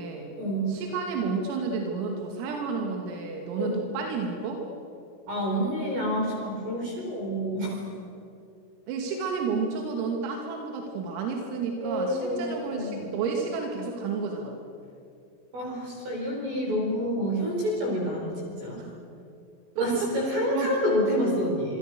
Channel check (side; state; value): left; late; 16 ms